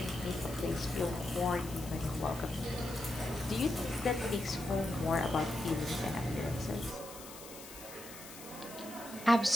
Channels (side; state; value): left; noise; hiss, 15 dB below the sound